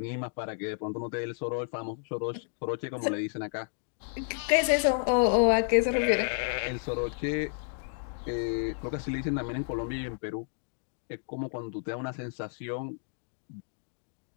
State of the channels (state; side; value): silent; right; 57 dB below the other